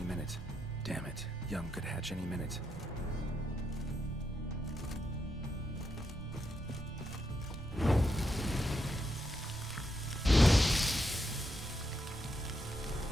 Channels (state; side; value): normal; both; correlation 0.82